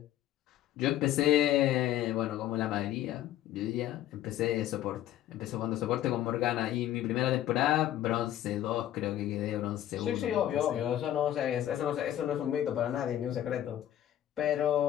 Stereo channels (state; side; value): quieter; right; 12.3 dB